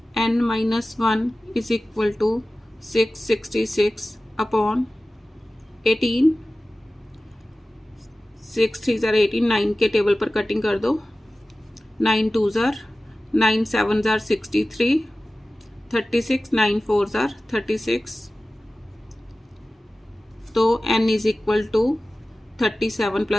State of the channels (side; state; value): both; normal; correlation 0.96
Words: n minus 1 is equal to 666 upon 18। 6 3 jar 18, 9 के टेबल पर कटिंग कर दो, 9 2 जार 9 7 जार 63, 36 9 4 जार 36, तो n is equal to 37